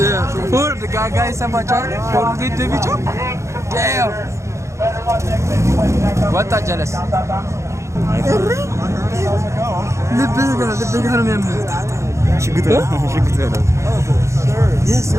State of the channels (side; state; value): left; late; 0.14 ms